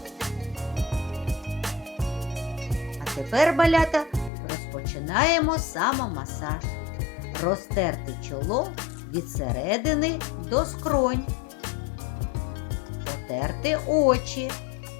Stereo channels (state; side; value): drops out; right; at 4.3 s